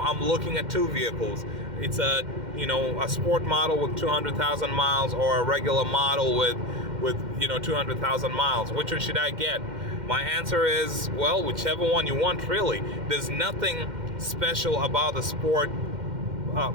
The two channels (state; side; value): late; left; 2.1 ms